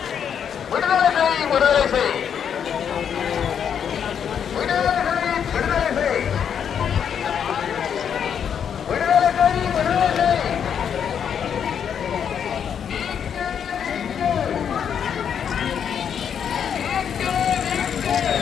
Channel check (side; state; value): right; quieter; 8.0 dB